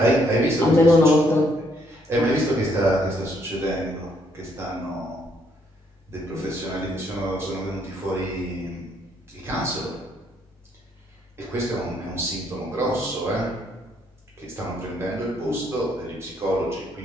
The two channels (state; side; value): normal; both; correlation 0.70